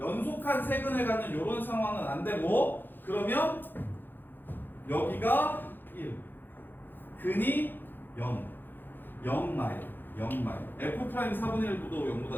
세근을 갖는 이런 상황은 안 되고 그러면 여기가 1 근이 0 마일 f 프라임 4분의 1도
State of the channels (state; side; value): late; right; 0.093 ms